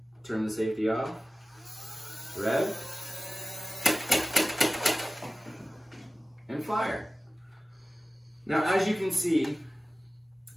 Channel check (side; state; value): both; normal; correlation 0.96